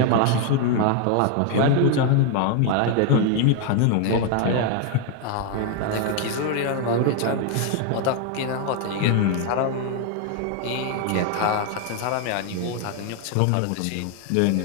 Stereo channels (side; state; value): both; different; correlation 0.00